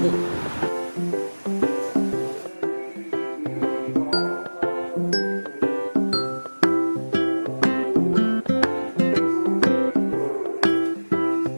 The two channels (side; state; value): both; inverted; correlation -1.00